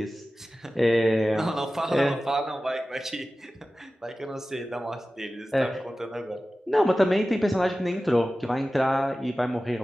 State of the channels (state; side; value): normal; both; correlation 0.95